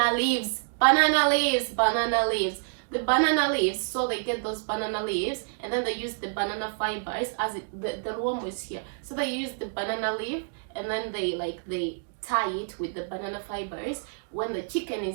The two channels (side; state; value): left; silent; digital silence